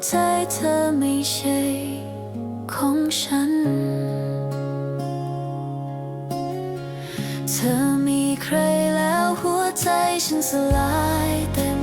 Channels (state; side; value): identical; both; correlation 1.00